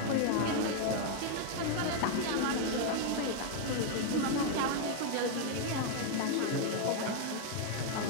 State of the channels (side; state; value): both; different; correlation 0.00